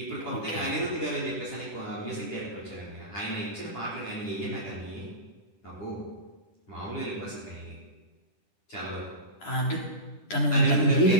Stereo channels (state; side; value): late; right; 10 ms